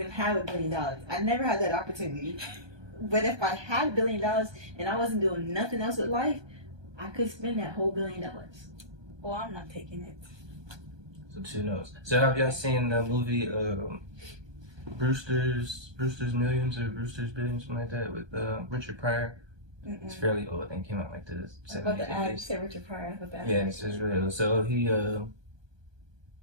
have $1 billion. I never had that opportunity. But if I had $1 billion and I wasn't doing nothing else with life, I could spend that whole $1 billion. Well, I'm not taking it. So 2 no's. So have y'all seen the movie Brewster's Millions or Brewster's Billions, something like that, with Richard Pryor. It's fairly old. I think it came out like the 70s. About the ad, you said Richard Pryor. Yeah, it's really old. So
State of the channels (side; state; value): left; late; 1.2 ms